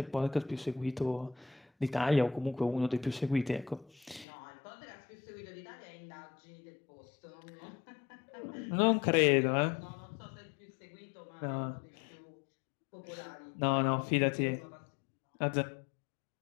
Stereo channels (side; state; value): right; drops out; at 4.2 s